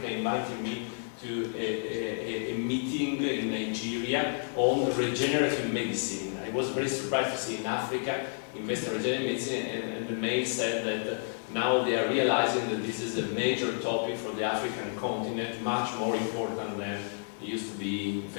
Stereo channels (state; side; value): silent; right; digital silence